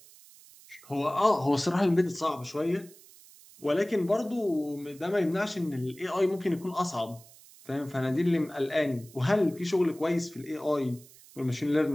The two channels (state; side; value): noise; right; hiss, 23 dB below the sound